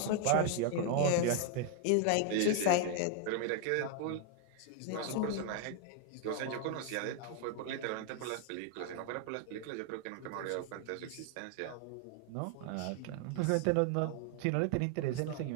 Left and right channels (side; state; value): both; different; correlation 0.00